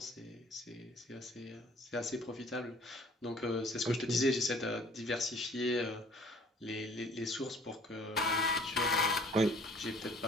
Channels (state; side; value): normal; both; correlation 0.54